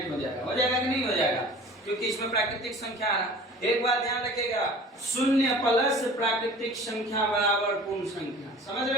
हो जाएगा कि नहीं हो जाएगा? क्योंकि इसमें प्राकृतिक संख्या आ रहा। एक बात ध्यान रखिएगा, शून्य प्लस प्राकृतिक संख्या बराबर पूर्ण संख्या। समझ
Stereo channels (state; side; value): normal; both; correlation 0.44